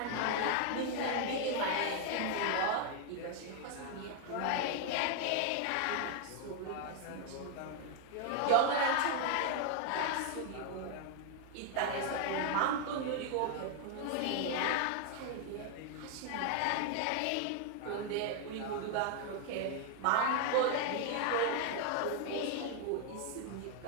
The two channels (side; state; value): both; different; correlation 0.00